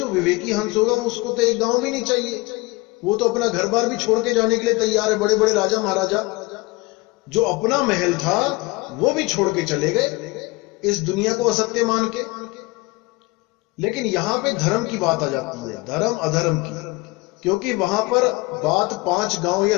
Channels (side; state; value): right; quieter; 23.5 dB